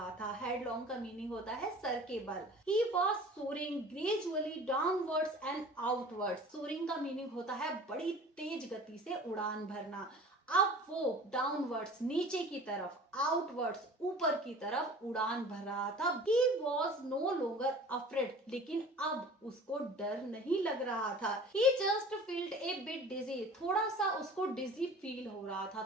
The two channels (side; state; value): both; normal; correlation 0.43